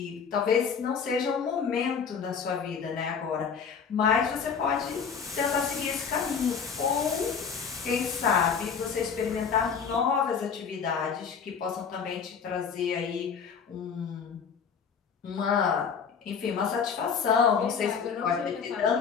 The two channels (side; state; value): right; quieter; 6.5 dB